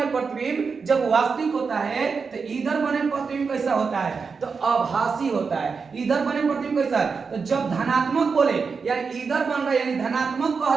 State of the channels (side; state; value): left; quieter; 5.2 dB